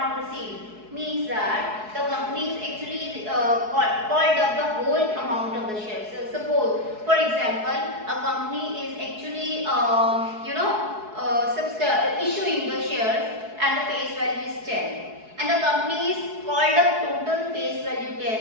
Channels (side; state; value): left; late; 4.7 ms